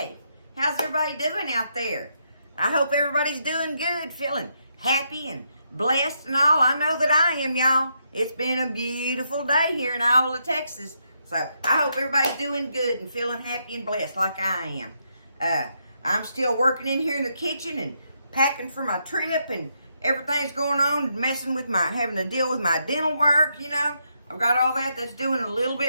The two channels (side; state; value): both; inverted; correlation -0.79